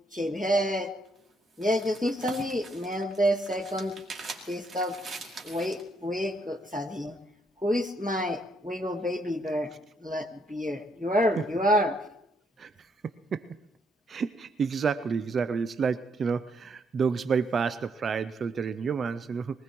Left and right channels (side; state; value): both; normal; correlation 0.74